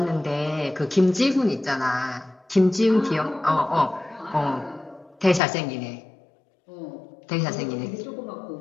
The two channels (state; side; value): drops out; right; at 5.4 s